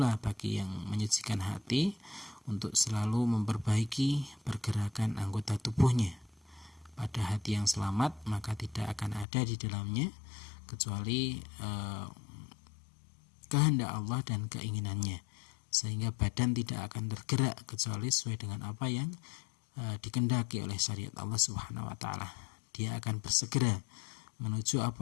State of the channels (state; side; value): drops out; right; at 9.2 s